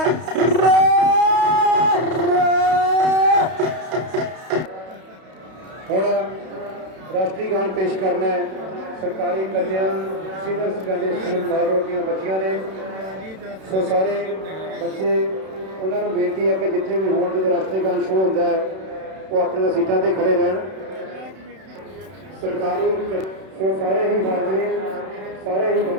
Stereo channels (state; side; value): late; left; 32 ms